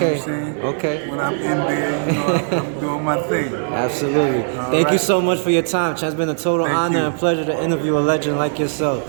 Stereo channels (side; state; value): left; silent; digital silence